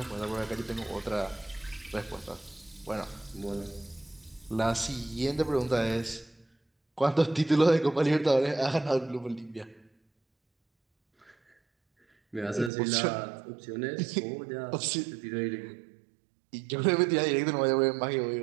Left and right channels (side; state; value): left; drops out; at 12.7 s